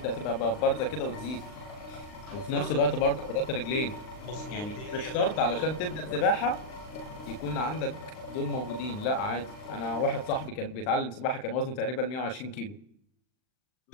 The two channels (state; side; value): late; right; 39 ms